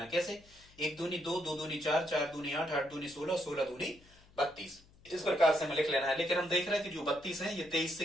कैसे? एक दूनी दो, दो दूनी चार, चार दूनी आठ, आठ दूनी 16, 16 दूनी 32। इस प्रकार से हमें लिख लेना है। लेकिन हम देख रहे हैं कि जो 32 है ये 23 से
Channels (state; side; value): noise; left; hum, 27 dB below the sound